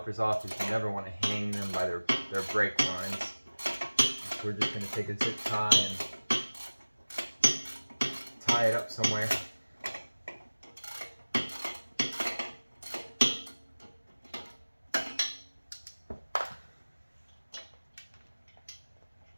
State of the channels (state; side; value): inverted; both; correlation -1.00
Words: off is you never want to hang them by their brake lines. So we're just going to take a zip tie and tie it up somewhere.